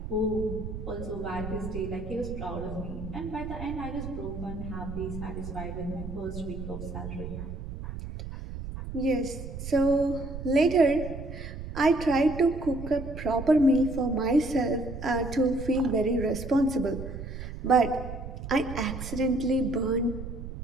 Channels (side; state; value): right; noise; rumble, 8 dB below the sound